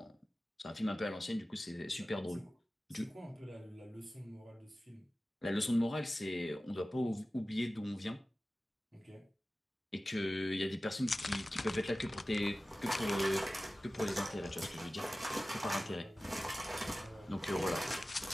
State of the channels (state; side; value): normal; both; correlation 0.96